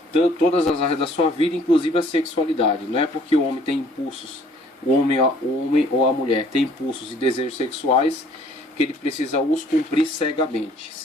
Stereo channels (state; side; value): normal; both; correlation 0.58